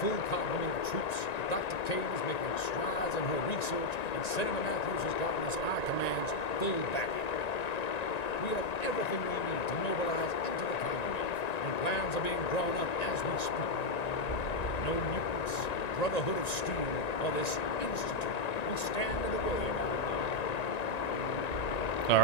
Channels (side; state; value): right; late; 1.9 ms